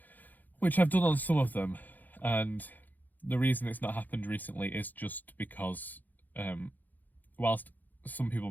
which I've done on some of them, and the reason it's not happened recently is just because, whilst some people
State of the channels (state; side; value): late; right; 0.084 ms